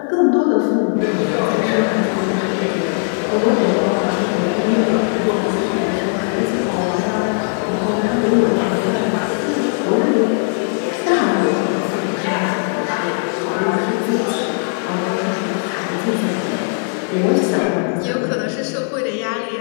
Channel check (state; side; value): silent; right; 55 dB below the other